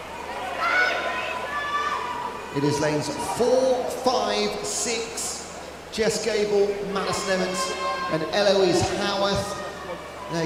It is lanes 4, 5, 6, Jess Gable, Madison Emmons and Eloise Howarth. They're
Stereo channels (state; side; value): identical; both; correlation 1.00